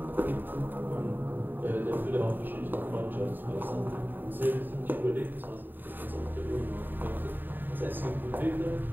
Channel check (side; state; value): left; late; 0.092 ms